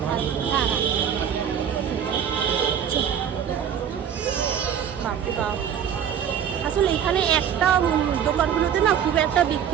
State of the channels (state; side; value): quieter; left; 8.6 dB